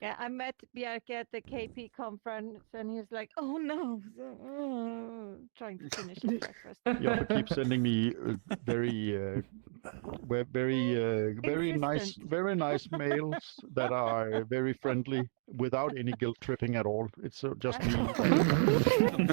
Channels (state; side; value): silent; left; digital silence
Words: Yeah, I met Bjarke at the KP conference, and he was like, "Oh no," trying to finish his breakfast. You also keep sending me very nice mails that are very friendly, without any guilt tripping at all. It's just me